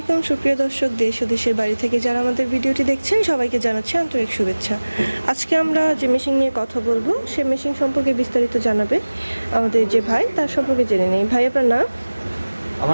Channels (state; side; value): inverted; both; correlation -1.00